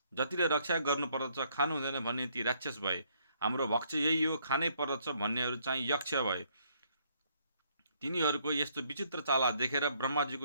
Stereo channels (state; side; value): inverted; both; correlation -0.68